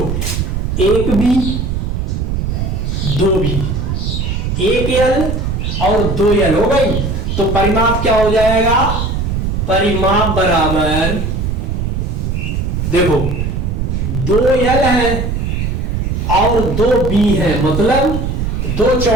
1 बी 2 बी, 1 एल और 2 एल हो गई, तो परिमाप क्या हो जाएगा, परिमाप बराबर, देखो 2 एल है और 2 बी है, मतलब 2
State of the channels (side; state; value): right; noise; rumble, 1 dB below the sound